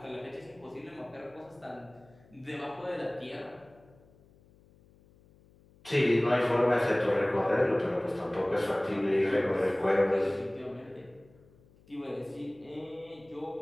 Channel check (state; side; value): noise; left; hum, 28 dB below the sound